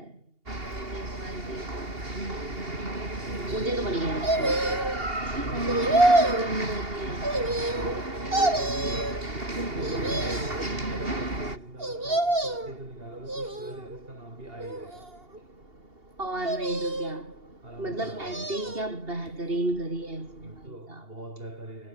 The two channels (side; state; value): left; late; 2.8 ms